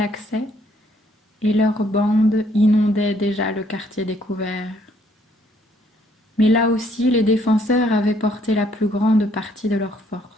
accès, et leurs bandes inondaient déjà le quartier découvert. Mais là aussi, les défenseurs avaient porté la plus grande partie de leurs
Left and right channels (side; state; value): both; normal; correlation 0.67